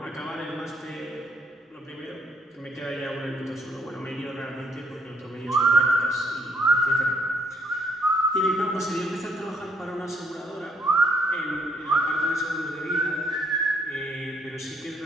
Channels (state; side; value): normal; both; correlation 0.69